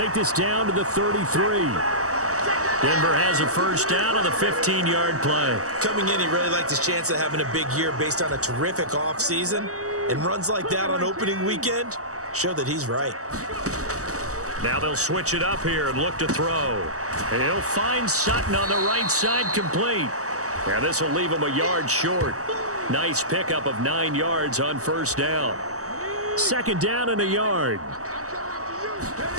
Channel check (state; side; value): late; left; 0.66 ms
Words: this down to the 33. Denver has a first down on the 15-yard play. Coming in, he really liked his chance of having a big year based on a terrific offseason. And runs like that on opening weekend show that he's right. Now they'll switch it up here and look to throw. And he'll find Sutton on the right side complete. And this will leave him a yard short. Nice pickup of 9 yards on first down. 2nd down and a yard.